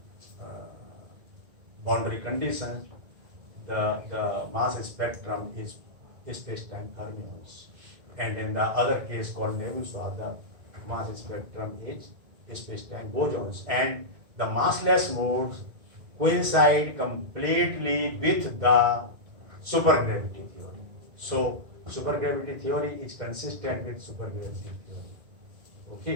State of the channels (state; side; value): late; left; 2.1 ms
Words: boundary conditions, the mass spectrum is space-time fermions, and in the other case called Nebuchadnezzar, the mass spectrum is space-time bosons, and the massless modes coincide completely with the supergravity theory. So supergravity theory is consistent with supergravity theory.